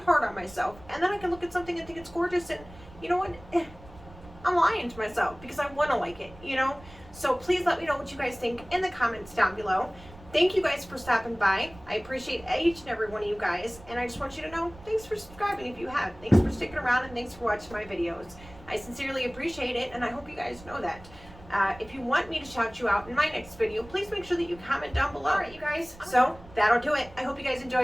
hard on myself, and then I can look at something and think it's gorgeous, and you know what? I'm lying to myself because I want to like it, you know? So please let me know what you guys think in the comments down below. Thank you guys for stopping by. I appreciate each and every one of you guys. And I just want you to know, thanks for subscribing if you have. Thanks for sticking around and thanks for watching my videos. I sincerely appreciate it, and I hope you guys know that. If you want me to shout you out in my next video, please make sure that you comment down below. Alright, you guys, so that'll do it. I hope you guys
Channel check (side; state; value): right; noise; rumble, 20 dB below the sound